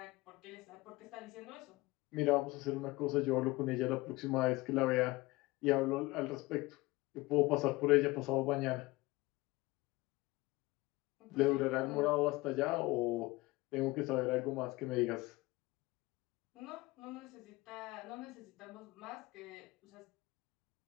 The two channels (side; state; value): right; quieter; 21.3 dB